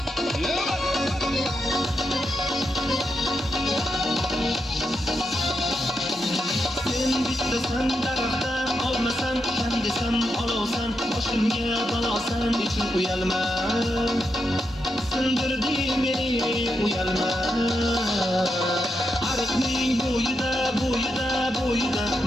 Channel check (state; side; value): normal; both; correlation 0.84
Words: Sen bittasan daraxtdan olmasan, kam desam olovsan, boshimga balosan, ichim uyalma, sindirding meni uyalma. Ariqning bo'yida